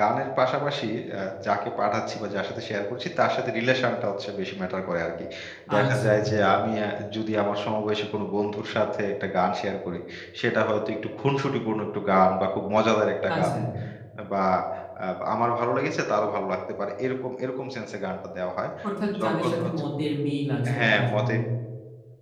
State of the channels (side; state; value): both; identical; correlation 1.00